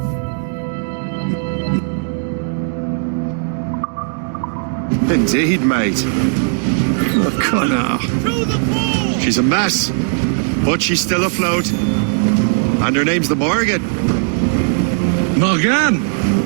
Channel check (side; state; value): left; silent; digital silence